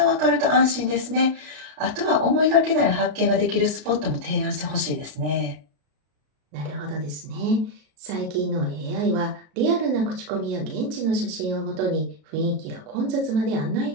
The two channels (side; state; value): left; late; 33 ms